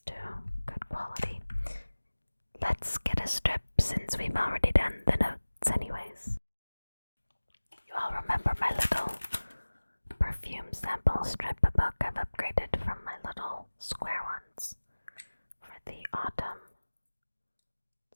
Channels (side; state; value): both; inverted; correlation -1.00